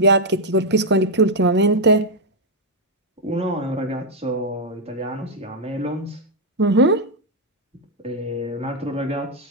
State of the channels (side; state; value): both; normal; correlation 0.00